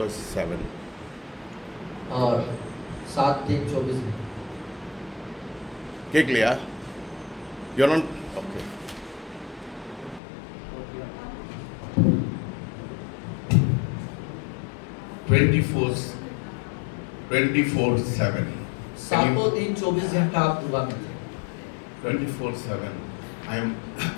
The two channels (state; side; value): drops out; right; at 10.2 s